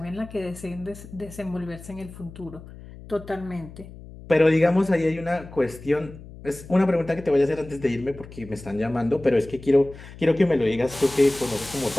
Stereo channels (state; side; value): noise; left; hum, 16 dB below the sound